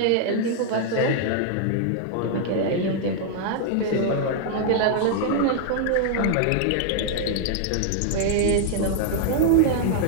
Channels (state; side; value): different; both; correlation -0.01